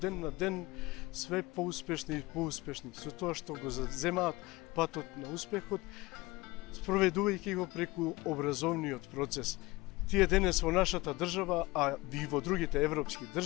ден на ден све поуспешни и поуспешни, со тоа што го заземаат патот на успехот, спроведувајќи го преку образовниот процес. Тие денес во нашата држава, а и во другите европски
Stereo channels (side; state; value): right; quieter; 21.5 dB